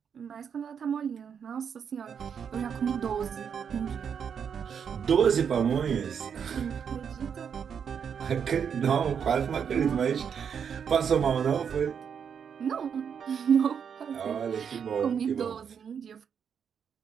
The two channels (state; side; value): quieter; left; 7.3 dB